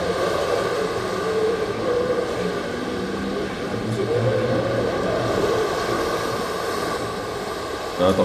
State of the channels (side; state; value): both; identical; correlation 1.00